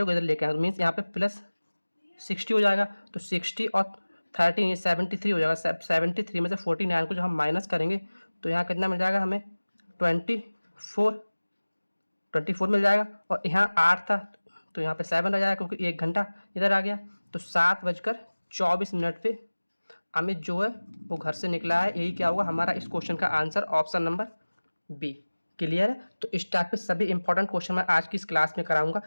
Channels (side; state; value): both; inverted; correlation -1.00